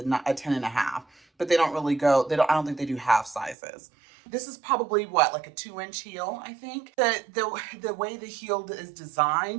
10.5, but they don't really go, I don't think they do half sizes. This is probably like a 2-inch heel, I think. The way the heel is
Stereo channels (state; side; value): drops out; left; at 3.6 s